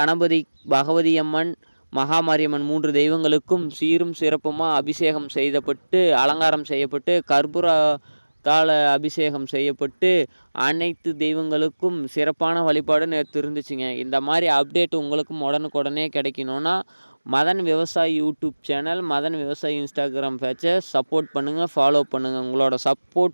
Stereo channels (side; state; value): both; inverted; correlation -1.00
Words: கணபதி, பகவதி அம்மன், மகாமாரியம்மன் 3 தெய்வங்களுக்கும் சீரும் சிறப்புமாக அபிஷேகம் செய்யப்பட்டு அலங்காரம் செய்யப்பட்டு கற்பூரத்தால் அபிஷேகம் செய்யப்பட்டு அனைத்து தெய்வங்களுக்கும் சிறப்பான வழிபாடு நேற்று இருந்துச்சுங்க. இந்த மாதிரி அப்டேட் உங்களுக்கும் உடனுக்குடனே கிடைக்கணுன்னா மதன் விவசாயி யூடியூப் சேனல், மதன் விவசாயி இன்ஸ்டாகிராம் பேஜை சப்போர்ட் பண்ணுங்கள், ஃபாலோ பண்ணுங்கள். உங்களோட